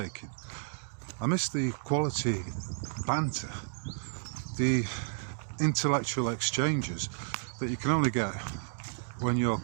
I missed the quality banter, the intellectual exchanges that you can only get when you're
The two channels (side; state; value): left; silent; digital silence